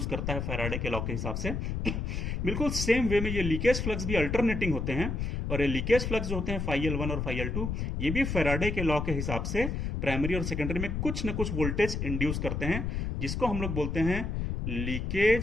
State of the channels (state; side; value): noise; left; rumble, 2 dB below the sound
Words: करता है फैराडे के लॉ के हिसाब से। बिल्कुल सेम वे में ये लीकेज फ्लक्स भी अल्टरनेटिंग होते हैं और ये लीकेज फ्लक्स जो होते हैं φL1 और φL2, ये भी फैराडे के लॉ के हिसाब से प्राइमरी और सेकेंडरी में कुछ न कुछ वोल्टेज इंड्यूस करते हैं, जिसको हम लोग बोलते हैं